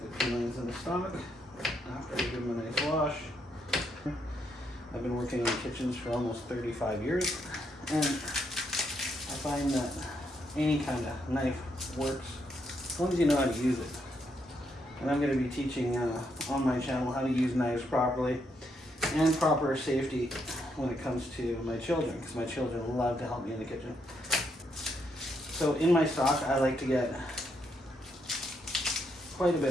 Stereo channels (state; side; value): normal; both; correlation 0.77